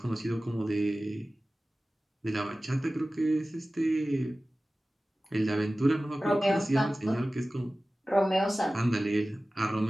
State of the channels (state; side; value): normal; both; correlation 0.96